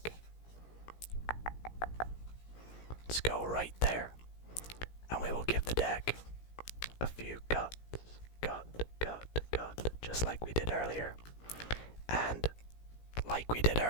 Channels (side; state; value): right; late; 17 ms